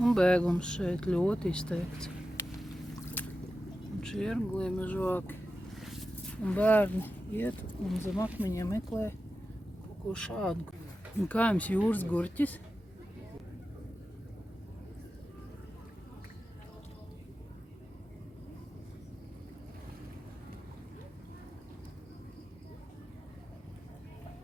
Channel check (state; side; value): normal; both; correlation 0.92